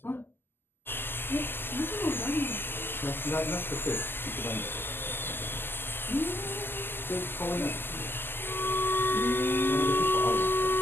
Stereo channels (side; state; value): right; late; 0.10 ms